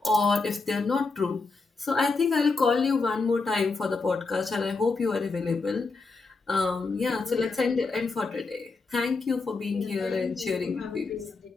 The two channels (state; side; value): quieter; right; 4.0 dB